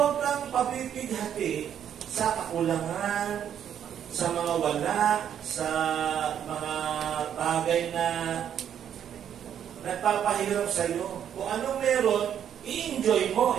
kang papipighati sa kakulangan, sa mga wala, sa mga bagay na nagpapahirap sa iyo. Kung anong meron, i-enjoy mo.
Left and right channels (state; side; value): quieter; left; 9.3 dB